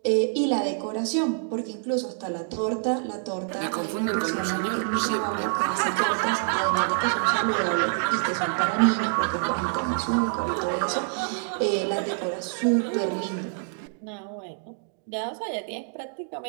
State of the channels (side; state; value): left; silent; digital silence